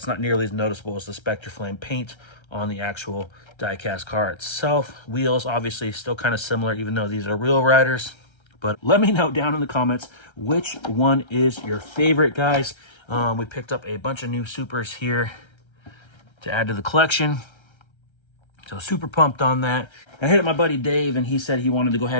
not nearly as noticeable as the Spectraflame paint on the actual diecast car itself. Wheels obviously still kind of similar, even though these are Wheel Riders. But let me know down in the comments which one is your favorite, guys. We picked up a bunch of new Supers here to add to the collection. So super pumped on that. I hit up my buddy Dave, and he said he wanted to go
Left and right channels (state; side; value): late; right; 1.3 ms